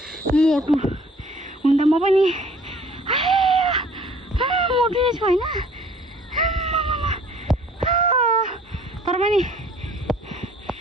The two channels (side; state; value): both; normal; correlation 0.55